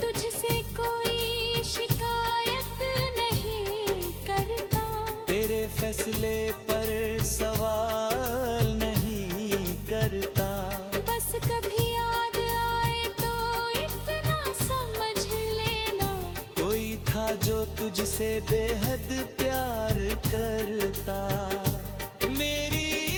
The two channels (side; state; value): both; identical; correlation 1.00